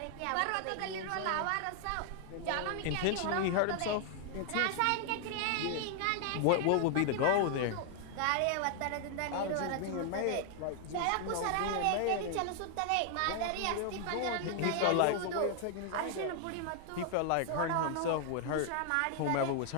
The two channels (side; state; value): both; different; correlation 0.00